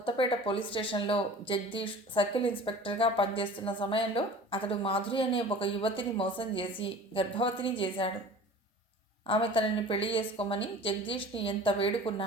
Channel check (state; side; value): normal; both; correlation 0.42